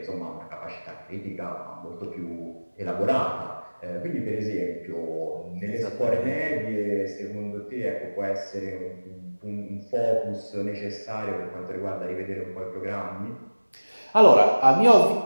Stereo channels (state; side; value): inverted; both; correlation -1.00